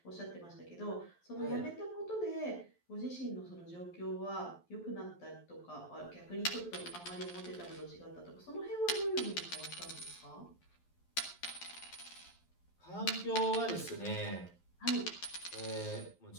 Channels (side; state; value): right; late; 11 ms